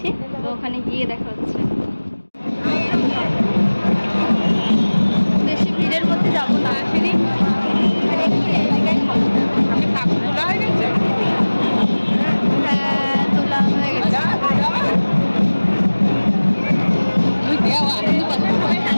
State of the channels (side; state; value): both; inverted; correlation -1.00